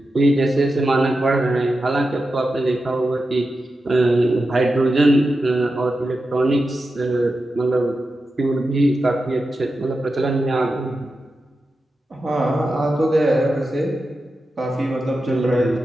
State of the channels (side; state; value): both; normal; correlation 0.90